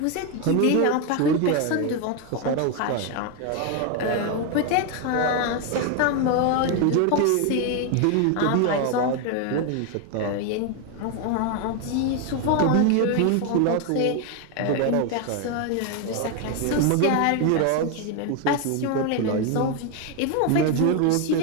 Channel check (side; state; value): both; different; correlation 0.01